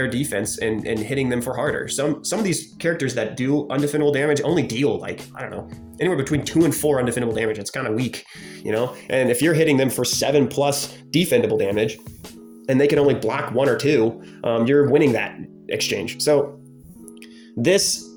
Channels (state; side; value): identical; both; correlation 1.00